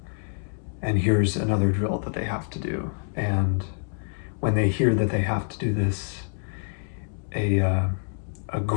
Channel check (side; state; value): right; silent; digital silence